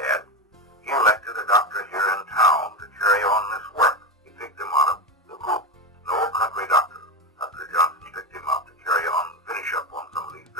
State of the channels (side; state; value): both; normal; correlation 0.16